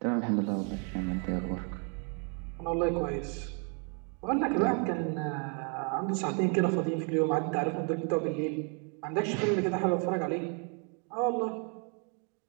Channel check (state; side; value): quieter; left; 38.6 dB